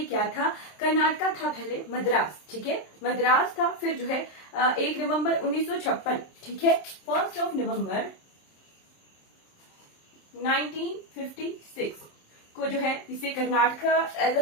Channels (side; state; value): right; late; 27 ms